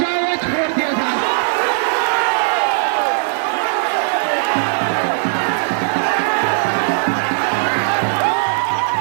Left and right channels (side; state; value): left; silent; digital silence